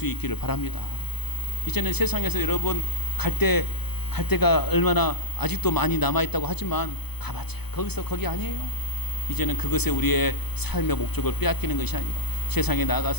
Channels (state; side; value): late; right; 0.98 ms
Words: 있기를 바랍니다. 이제는 세상에서 여러분 갈 데가 얼마나 아직도 많이 남아있다고 하지만 가봤자 거기 아니에요. 이제는 그것에 우리의 삶의 목적을 빼앗기는 것이 아니라 세상에